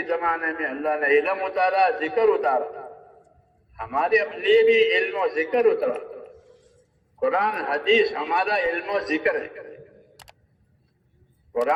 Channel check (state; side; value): identical; both; correlation 1.00